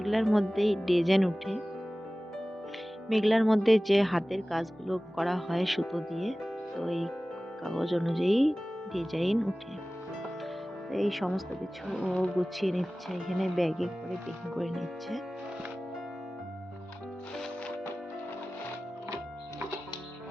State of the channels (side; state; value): both; normal; correlation 0.97